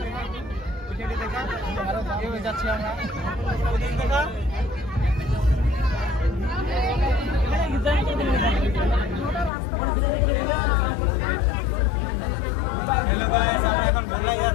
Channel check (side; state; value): right; drops out; at 9.5 s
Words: ওইখানে দেখা আরো আগে যাচ্ছি আমরা ওদিকে দেখা হ্যালো গাইস আমরা এখন বলাই